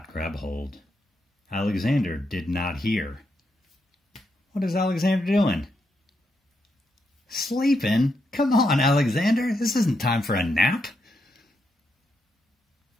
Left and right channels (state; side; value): normal; both; correlation 0.81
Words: grab hold. Alexander did not hear. What is Alexander doing? Sleeping? Come on, Alexander. This isn't time for a nap.